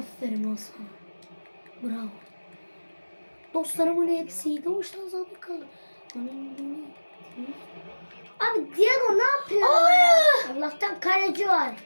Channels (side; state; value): both; inverted; correlation -1.00